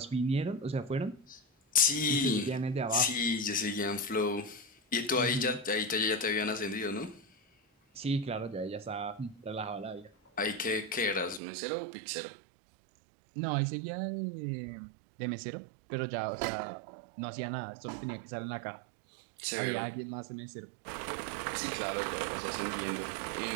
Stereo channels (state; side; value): drops out; left; at 11.4 s